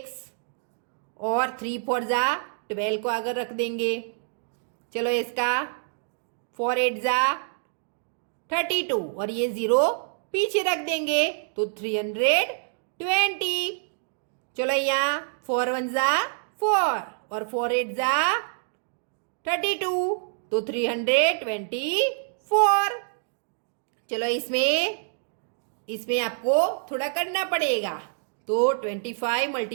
और 3 4 जा 12 को आगे रख देंगे। चलो इसका 4 8 जा 32 और ये 0 पीछे रख देंगे, तो 320। चलो यहाँ 4 1 जा 4 और 4 8 जा 32, तो 324। चलो इसमें आपको थोड़ा करना पड़ेगा, तो 25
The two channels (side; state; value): left; silent; digital silence